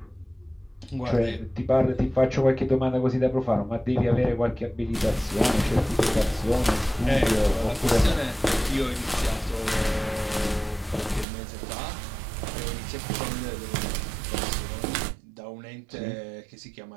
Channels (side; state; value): left; drops out; at 11.2 s